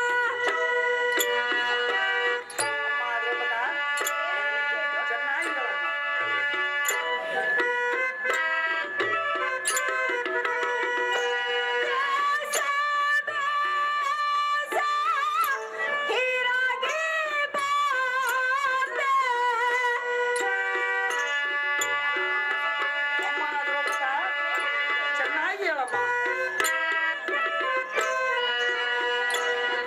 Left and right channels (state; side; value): identical; both; correlation 1.00